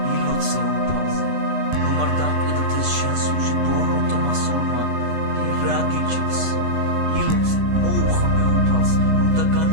ილოცე უფალზე რომ არ დამკვიდრდეს შენ სულში ბოროტო მასულმა რა გიჭირს ილოცე მოუხმე უფალს რომ და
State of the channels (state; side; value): late; left; 8.2 ms